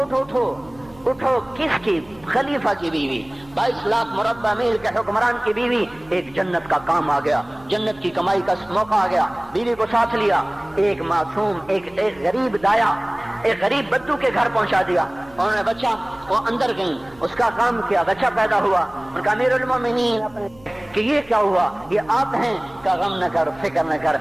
اٹھو. کس کی؟ خلیفہ کی بیوی, 22 لاکھ مربع میل کے حکمران کی بیوی. ایک جنت کا کام آ گیا, جنت کی کمائی کا موقع آ گیا. بیوی کو ساتھ لیا, ایک معصوم, ایک غریب دایا, ایک غریب بدو کے گھر پہنچا دیا. انہوں نے بچہ, وہ اندر گئی, اس کا کام کیا, بچہ پیدا ہوا. ان کا امیر المومنین کہ یہ کیا ہوا؟ یہ آپ ہیں؟ کہ غم نہ کر, فکر نہ کر,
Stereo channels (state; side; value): noise; right; hum, 26 dB below the sound